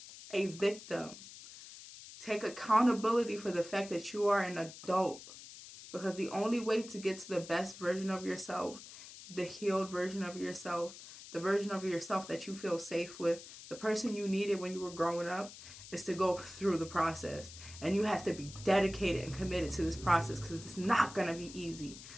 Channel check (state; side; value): noise; left; hiss, 15 dB below the sound